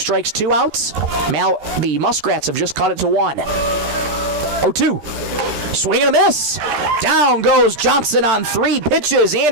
2 outs. The Muskrats have just cut it to 1. 0-2. Swing and a miss. Down goes Johnson on 3 pitches.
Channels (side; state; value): left; late; 13 ms